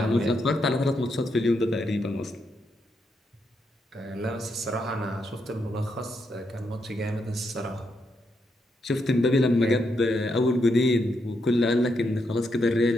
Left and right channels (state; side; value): normal; both; correlation 0.80